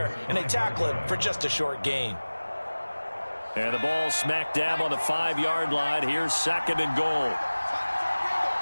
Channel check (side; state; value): both; inverted; correlation -1.00